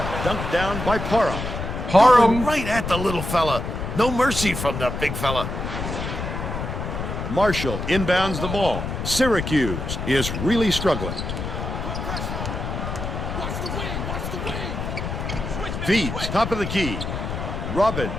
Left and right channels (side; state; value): left; noise; rumble, 4 dB below the sound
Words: dunked down by Parham. Parham. Right at the little fella. No mercy from the big fella. Marshall inbounds the ball. Syracuse is really struggling. Feeds, top of the key. Robbins